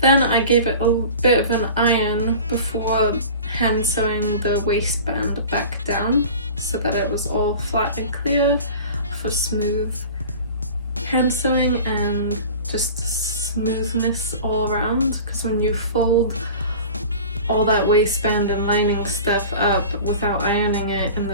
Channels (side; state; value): both; inverted; correlation -0.38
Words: I gave it a bit of an iron before hand sewing the waistband back down so that it was all flat and clear for smooth hand sewing and just smoothness all around, because when you fold all that waistband and lining stuff up without ironing it and